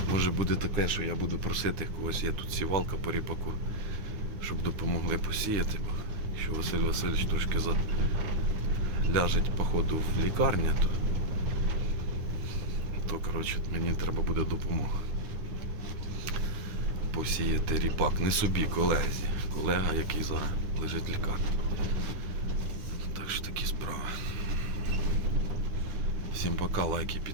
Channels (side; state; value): left; late; 9.9 ms